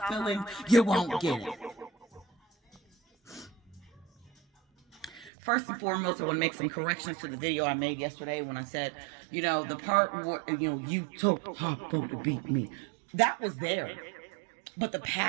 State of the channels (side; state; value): left; drops out; at 5.3 s